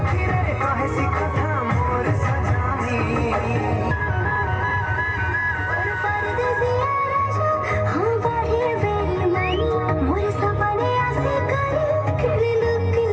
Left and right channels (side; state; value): both; identical; correlation 1.00